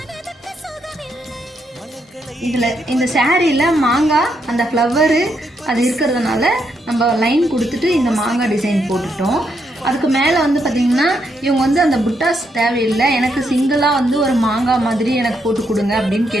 இதில் இந்த சாரியில் மாங்காய் அந்த ஃப்ளவரு அது இருக்கிறதுனால நம்ம லைன் கொடுத்துட்டு இந்த மாங்காய் டிசைன் போட்டுட்டோம். அதுக்கு மேலே வந்து பார்த்திங்கன்னா இவங்க வந்து அந்த புட்டாஸ் தேவையில்லை, எனக்கு சிங்கிளாக வந்து ஒரு மாங்காய் மாதிரி எனக்கு போட்டு கொடுங்க அப்படின்னு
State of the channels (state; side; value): normal; both; correlation 0.78